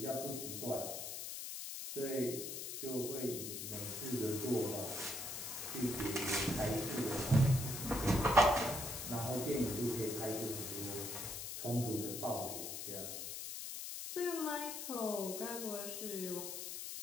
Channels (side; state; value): left; noise; hiss, 6 dB below the sound